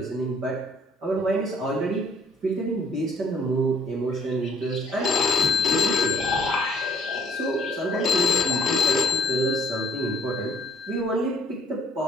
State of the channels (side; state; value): both; normal; correlation 0.60